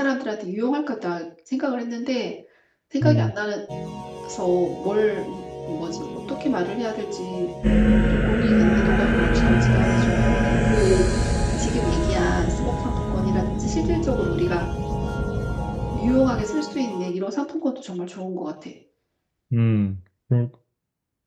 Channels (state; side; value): identical; both; correlation 1.00